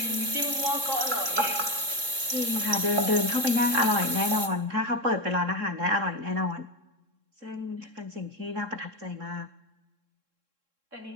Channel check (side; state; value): left; late; 3.7 ms